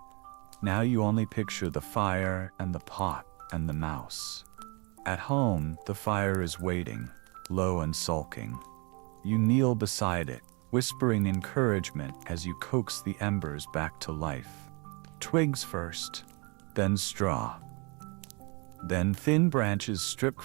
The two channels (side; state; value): left; quieter; 31.1 dB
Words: Now you only picture the fire and the pot and the mouse. At home, the fire is waiting, low and sulking. You kneel beside it, whispering encouragement as you coax the embers back to life. Twigs first, then straw. Then thin branches stripped